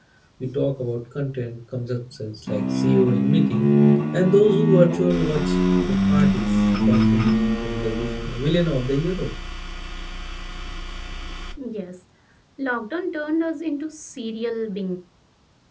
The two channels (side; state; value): both; identical; correlation 1.00